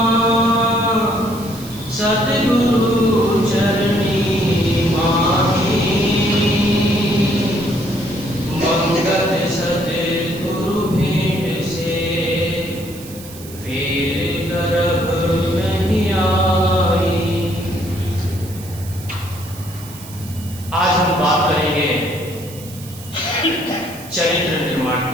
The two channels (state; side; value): noise; right; hiss, 17 dB below the sound